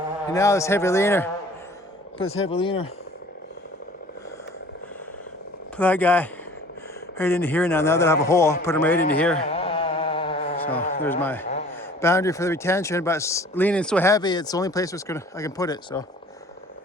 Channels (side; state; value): both; normal; correlation 0.49